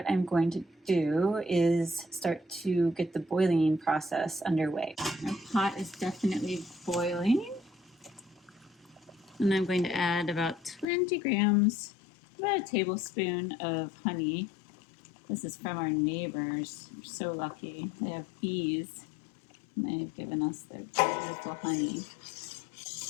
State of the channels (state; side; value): drops out; right; at 10.9 s